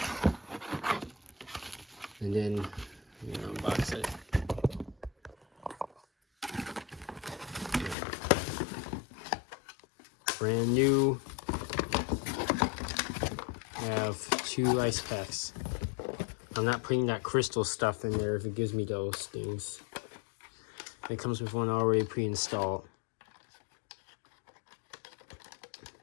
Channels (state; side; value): drops out; right; at 8.0 s